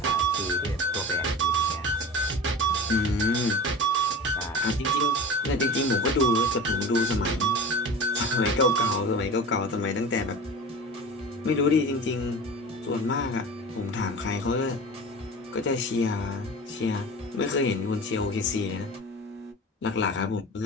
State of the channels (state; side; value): normal; both; correlation 0.34